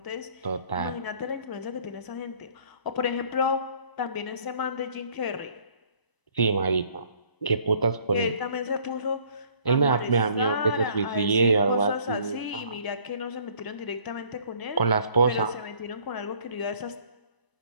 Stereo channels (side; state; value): right; late; 1.0 ms